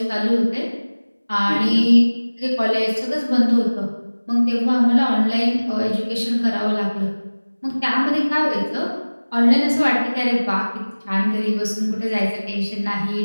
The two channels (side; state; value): both; inverted; correlation -1.00